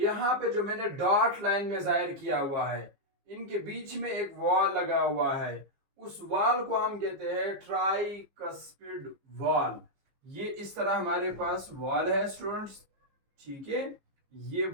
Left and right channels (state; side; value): late; left; 15 ms